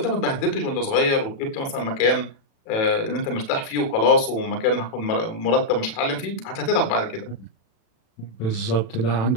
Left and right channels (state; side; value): late; right; 36 ms